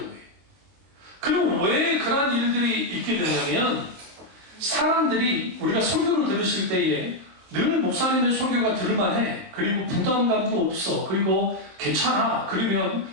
그럼 왜 그런 일들이 있게 되냐면 사람들이 우리가 설교를 들으실 때에 늘 목사님의 설교가 들을만해. 그리고 부담감도 없어. 그리고 괜찮아. 그러면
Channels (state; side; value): late; left; 23 ms